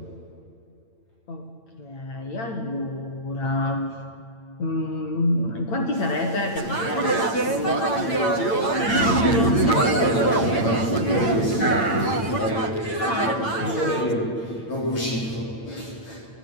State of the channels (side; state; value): right; late; 8.8 ms